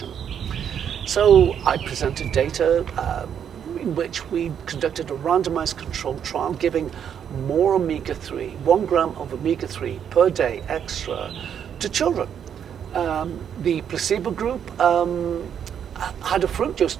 So I presented data in which we conducted a randomized controlled trial giving more omega-3, 1 gram of omega-3 per day extra to children. The placebo group had a fruit juice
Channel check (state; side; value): quieter; left; 8.5 dB